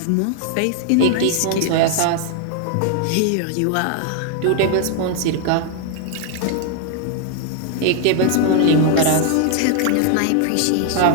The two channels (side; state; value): both; different; correlation 0.00